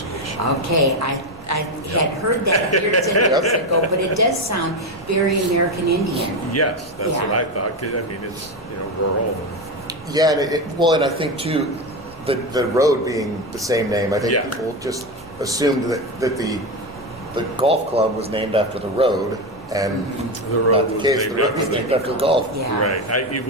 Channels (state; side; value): normal; both; correlation 0.15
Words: Okay, I had heard that years and years ago, but it does sound very American Indian. Yes, that's Yeah. what I thought. 'Cause, I mean, it's rural. Yeah, and I think too, the road being the same name, I think Yeah. people just assumed that the golf club was named after the road, and The road not the was case. named The road was after named after the golf. Yeah. Right.